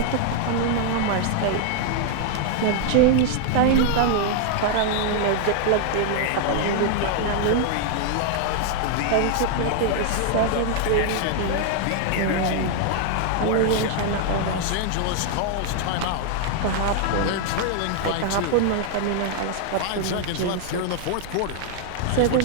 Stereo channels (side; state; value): both; different; correlation 0.00